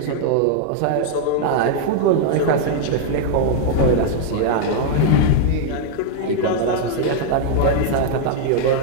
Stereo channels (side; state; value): both; different; correlation -0.01